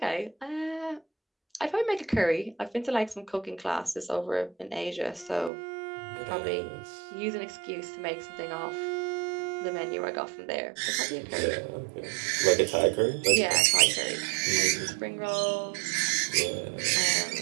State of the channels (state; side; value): drops out; left; at 5.5 s